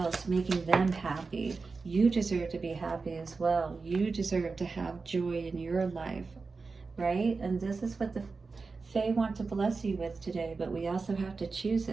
making them happy. You deserve to be happy as well. You deserve to have joy in your life, right? And this is what the Fae want to bless you with today, but we also have to choose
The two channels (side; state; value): left; quieter; 4.3 dB